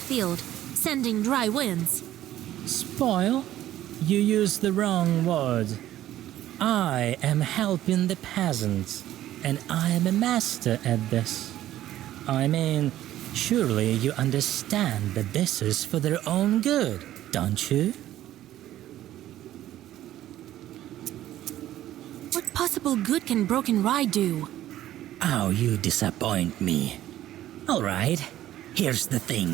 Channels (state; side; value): quieter; left; 13.3 dB